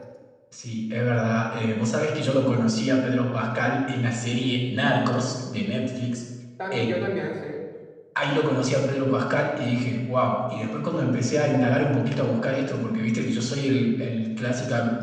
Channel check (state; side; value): identical; both; correlation 1.00